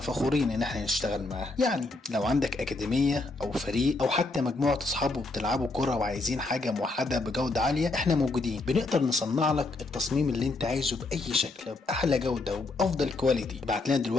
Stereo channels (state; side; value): quieter; right; 3.3 dB